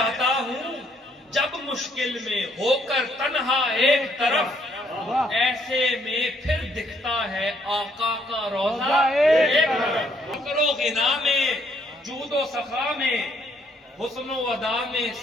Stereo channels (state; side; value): normal; both; correlation 0.68